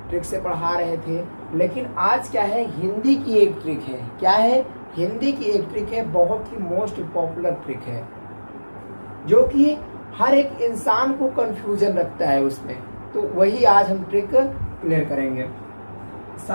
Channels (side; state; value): both; inverted; correlation -1.00